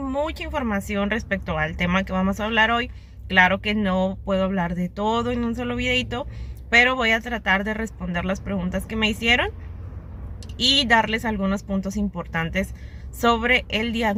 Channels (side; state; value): both; identical; correlation 1.00